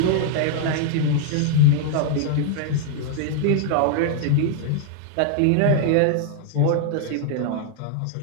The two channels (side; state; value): both; different; correlation 0.00